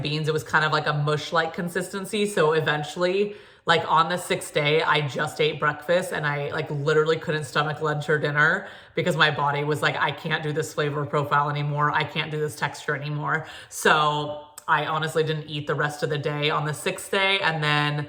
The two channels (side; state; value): both; identical; correlation 1.00